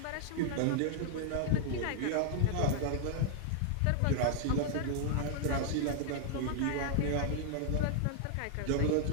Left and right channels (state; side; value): different; both; correlation -0.01